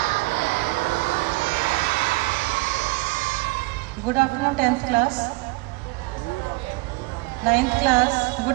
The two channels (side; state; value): left; quieter; 24.6 dB